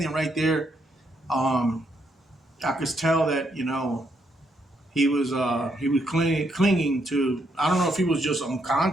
right there. I could tell that, you know, he was clinging to. I don't know if he was just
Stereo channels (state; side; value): normal; both; correlation 0.76